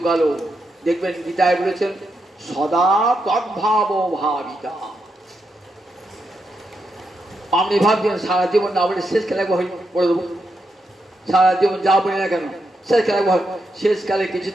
দেখবেন গীতায় বলেছেন সদা তদ্ভাব ভাবিতা। আপনি ভাবছেন সারা জীবন না বলে শেষ খেলা পড়ে দেবো, সারা জীবন যা বলি না কেন শেষ খেলা, শেষকালে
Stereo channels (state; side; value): normal; both; correlation 0.83